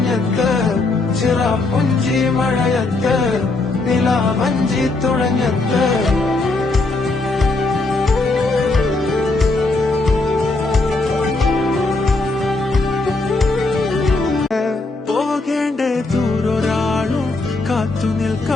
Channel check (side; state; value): right; quieter; 3.3 dB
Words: ചിറാപ്പുഞ്ചി മഴയത്ത് നിലാവഞ്ചി തുഴഞ്ഞത്ത്. പോകേണ്ട ദൂരൊരാളും കാത്തു